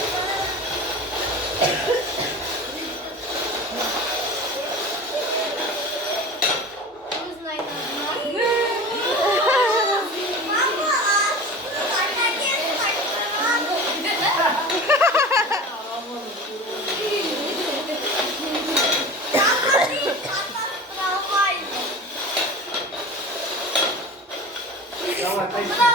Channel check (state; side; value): normal; both; correlation 0.34